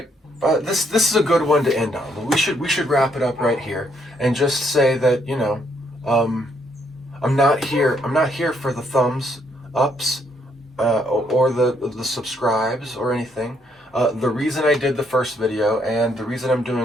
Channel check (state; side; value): normal; both; correlation 0.72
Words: But this is a good one to end on. We should wrap it up right here and just say that, you know, I'm not here for the thumbs ups or the subscribes or anything. The reason I did the first video and the reason I'm